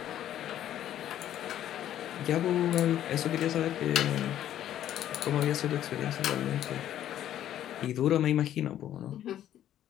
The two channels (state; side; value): quieter; right; 11.6 dB